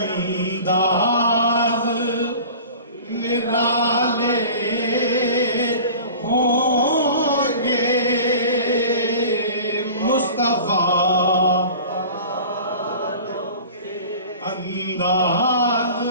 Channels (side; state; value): both; inverted; correlation -0.41